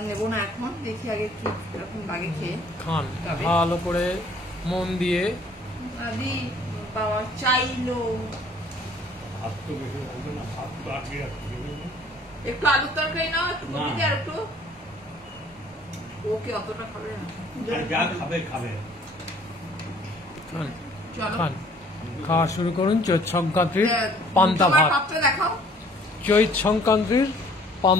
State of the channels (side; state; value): both; normal; correlation 0.57